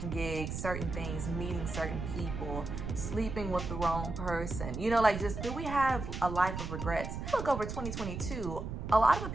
gigs, certain things, meeting certain people, sleeping with the wrong person? You know, like, just do we have a life of regrets? Look over 2022, a lot of the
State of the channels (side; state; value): right; noise; rumble, 6 dB below the sound